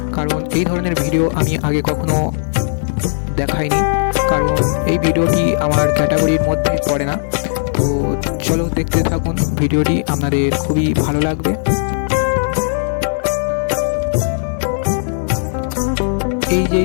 কারণ এই ধরনের ভিডিও আমি আগে কখনো দেখাইনি, কারণ এই ভিডিওটি আমার ক্যাটাগরির মধ্যে পড়ে না। তো চলো দেখতে থাকুন ভিডিওটি, আপনাদের খুবই ভালো লাগবে। এই যে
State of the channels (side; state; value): right; silent; digital silence